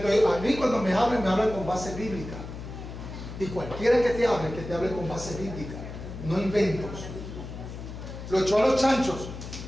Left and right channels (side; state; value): left; noise; hum, 10 dB below the sound